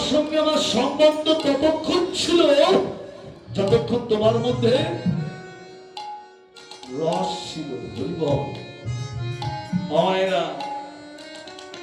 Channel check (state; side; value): identical; both; correlation 1.00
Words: সঙ্গে আমার সম্বন্ধ ততক্ষণ ছিল যতক্ষণ তোমার মধ্যে রস ছিল। মায়েরা,